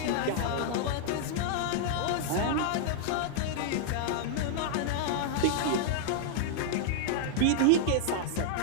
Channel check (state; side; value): different; both; correlation -0.01